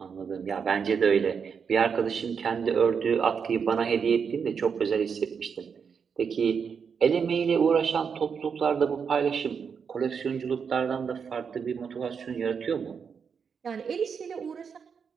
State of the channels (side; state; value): left; quieter; 6.4 dB